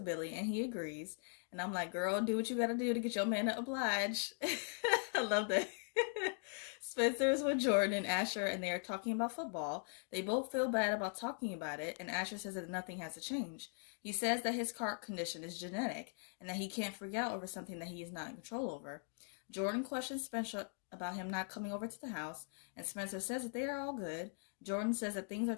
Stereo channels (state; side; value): silent; right; 51 dB below the other